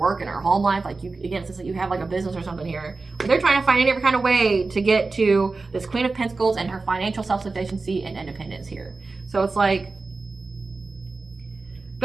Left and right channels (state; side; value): quieter; left; 3.8 dB